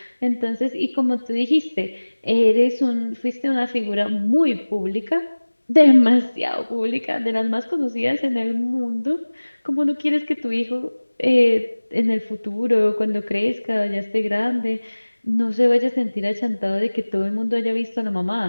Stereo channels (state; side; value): inverted; both; correlation -1.00